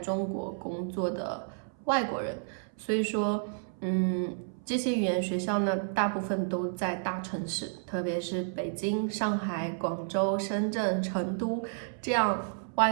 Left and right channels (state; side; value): silent; left; 57 dB below the other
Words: 国工作的外国人，所以说这些语言学校呢，大部分都在大城市，特别是北京、上海、广州、深圳、成都这样